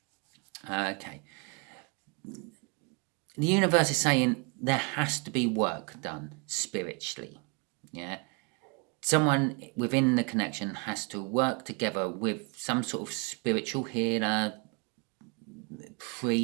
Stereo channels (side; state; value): left; quieter; 32.1 dB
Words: Okay. The universe is saying there has to be work done spiritually. Yeah. Someone within the connection has to work together with some sort of spiritual healer,